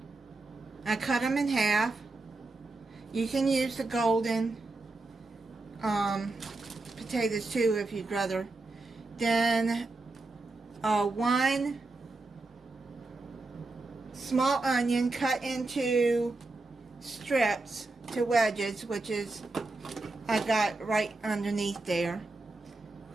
I cut them in half. You can use the golden potatoes too if you'd rather. Then 1 small onion cut into strips to wedges, which is I got right underneath there.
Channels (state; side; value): quieter; left; 3.2 dB